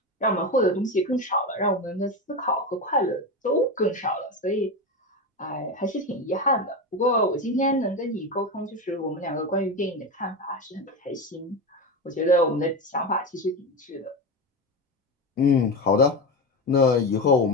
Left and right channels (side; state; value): both; normal; correlation 0.19